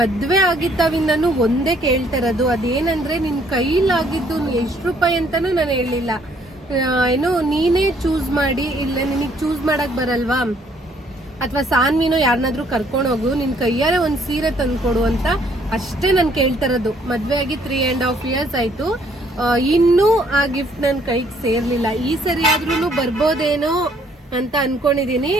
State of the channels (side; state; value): both; normal; correlation 0.65